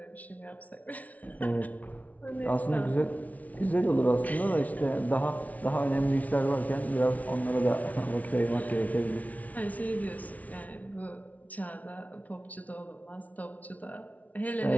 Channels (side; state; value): right; late; 0.071 ms